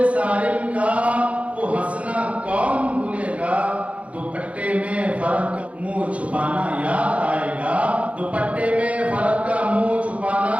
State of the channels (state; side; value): late; left; 0.064 ms